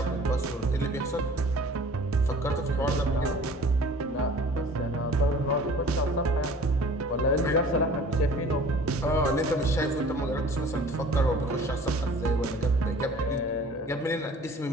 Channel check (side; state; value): both; normal; correlation 0.48